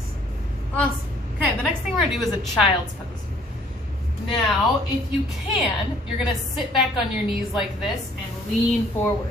Awesome. Okay, the next thing we're gonna do is a child's pose. Now, if you can, you're gonna sit back on your knees like this and lean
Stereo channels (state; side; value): normal; both; correlation 0.59